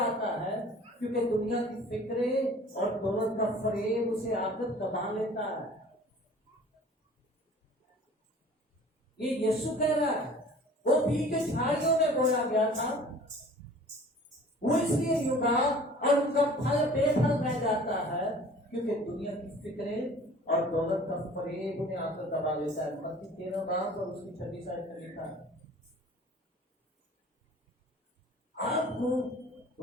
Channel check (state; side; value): normal; both; correlation 0.47